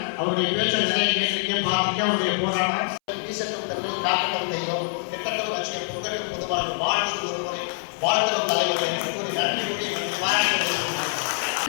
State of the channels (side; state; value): right; silent; 62 dB below the other